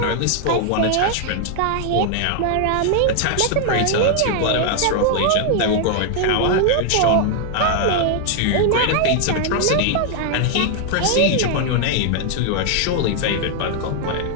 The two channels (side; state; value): both; different; correlation 0.00